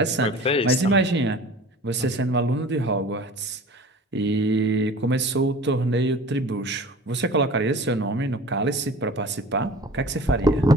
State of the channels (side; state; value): both; normal; correlation 0.41